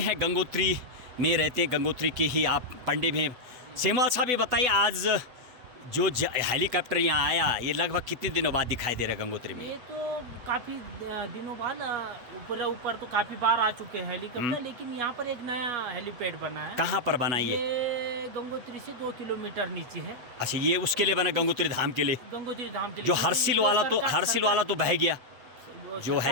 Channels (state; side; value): late; left; 8.1 ms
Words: गंगोत्री में रहते हैं, गंगोत्री के ही आप पंडित हैं। सेमवाल साहब ये बताइए, आज जो हेलीकॉप्टर यहाँ आया ये लगभग कितने दिनों बाद दिखाई दे रहा है गंगोत्री में? ये तो काफ़ी दिनों बाद ऊपर तो काफ़ी बार आ चुके हैं हेलीकॉप्टर, लेकिन यहाँ पर एक नया हेलीपैड बना है। कहाँ पर बना ये? गंगोत्री से 2 किलोमीटर नीचे है। अच्छा, ये उसके लिए बना, गंगोत्री धाम के लिए? गंगोत्री धाम के लिए। जो हर्षिल वाला तो बह गया, जो